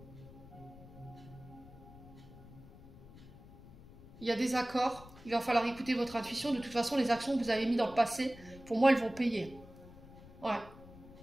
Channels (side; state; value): left; noise; rumble, 19 dB below the sound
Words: Il y a des accords, il va falloir écouter votre intuition. De toute façon, les actions que vous avez mises dans le passé, pour moi, elles vont payer. Ouais.